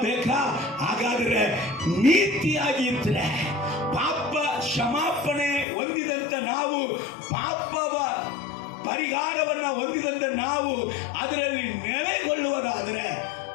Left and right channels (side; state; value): right; drops out; at 5.7 s